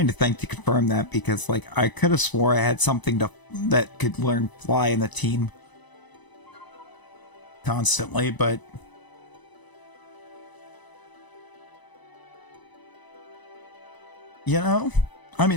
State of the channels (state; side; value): late; right; 1.0 ms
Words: to think to confirm that, because, like, I could have swore I had something that could learn Fly in the team constantly, but you know, I